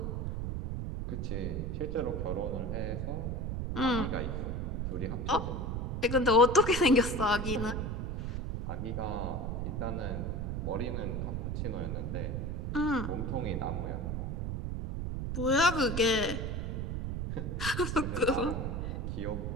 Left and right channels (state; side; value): noise; right; rumble, 2 dB below the sound